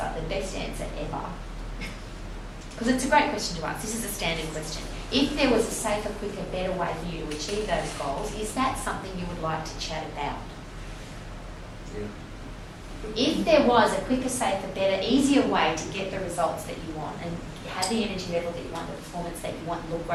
the best answer ever. Because it's a great question to ask. This is a standard question. If there was a safer, quicker, better way for you to achieve those goals, is that something you would like to chat about? Yeah. If there was a quicker, safer, better, easier way to get the results that you want and have the energy level that you want, the performance that you want, and look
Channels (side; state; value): both; identical; correlation 1.00